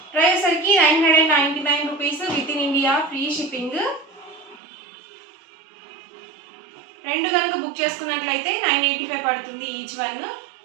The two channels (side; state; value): left; drops out; at 4.6 s